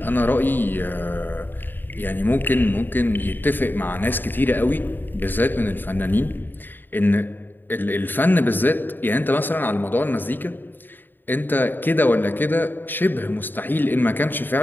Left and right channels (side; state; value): right; late; 0.093 ms